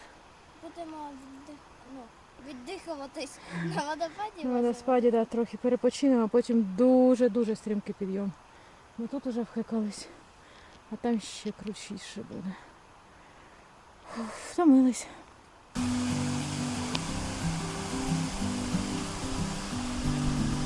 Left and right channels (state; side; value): identical; both; correlation 1.00